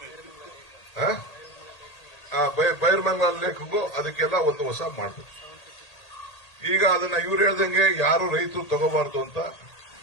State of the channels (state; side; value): late; right; 1.8 ms